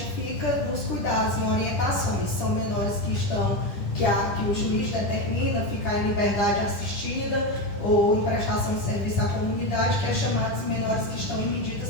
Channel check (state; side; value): late; right; 10 ms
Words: fica nos cuidados, em orientações. São menores que o juiz determina ficar em liberdade assistida ou em prestação de serviço à comunidade, que é chamados menores que estão em medidas